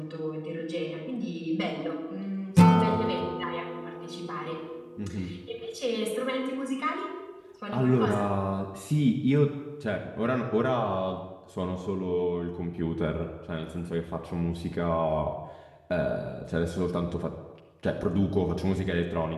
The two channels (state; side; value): identical; both; correlation 1.00